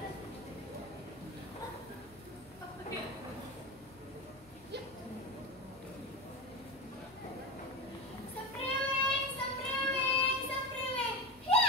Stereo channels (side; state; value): right; noise; rumble, 25 dB below the sound